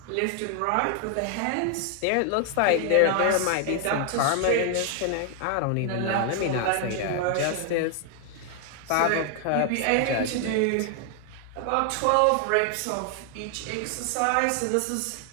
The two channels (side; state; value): both; different; correlation 0.00